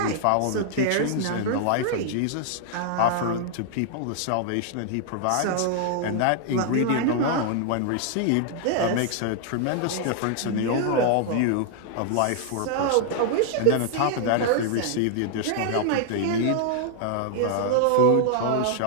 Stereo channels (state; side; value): different; both; correlation -0.01